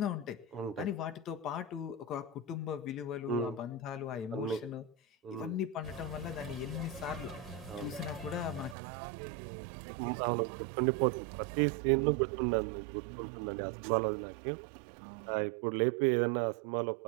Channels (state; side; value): drops out; left; at 8.8 s